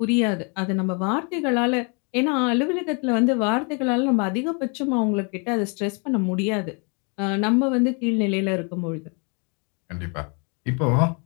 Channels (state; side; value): quieter; right; 35.4 dB